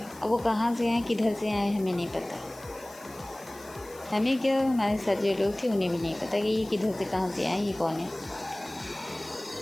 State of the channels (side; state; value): left; noise; hiss, 21 dB below the sound